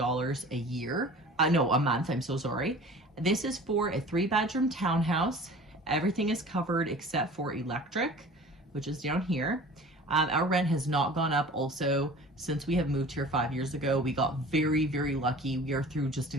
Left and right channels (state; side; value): normal; both; correlation 0.42